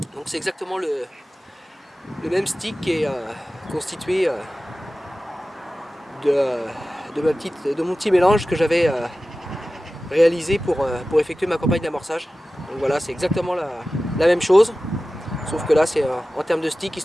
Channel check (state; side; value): normal; both; correlation 0.95